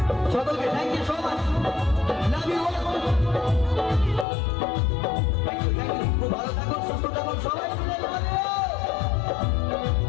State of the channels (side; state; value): right; drops out; at 4.2 s